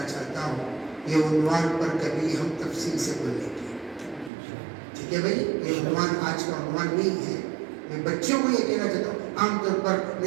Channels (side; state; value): left; drops out; at 4.3 s